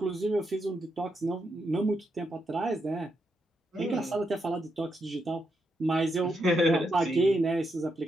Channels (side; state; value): both; normal; correlation 0.82